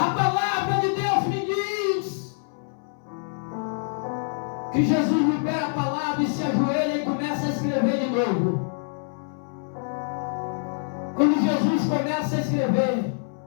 palavra de Deus me diz que Jesus libera a palavra e se ajoelha e começa a escrever de novo. Quando Jesus começa a escrever,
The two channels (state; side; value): silent; right; 61 dB below the other